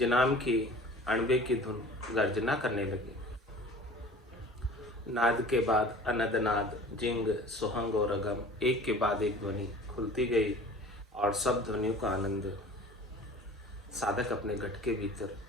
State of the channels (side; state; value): both; normal; correlation 0.44